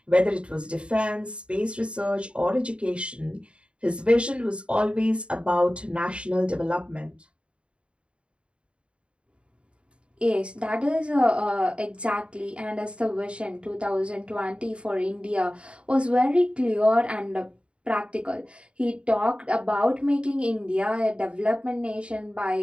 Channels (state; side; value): late; left; 0.057 ms